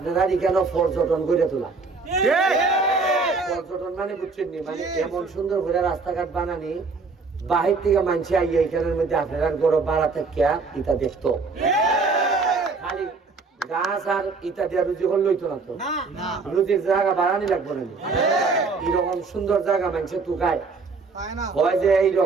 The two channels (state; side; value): quieter; left; 4.3 dB